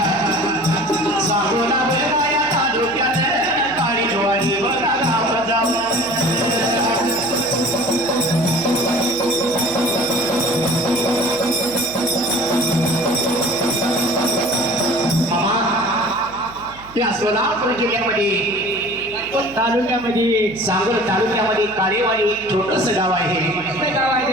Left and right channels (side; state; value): right; noise; hum, 22 dB below the sound